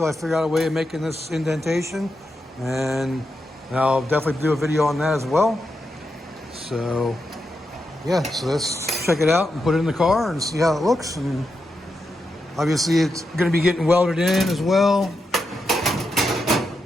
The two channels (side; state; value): both; normal; correlation 0.86